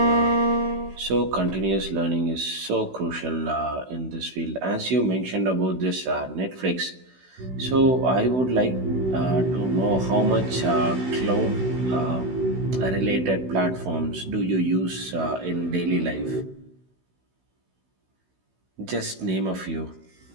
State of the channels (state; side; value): late; left; 16 ms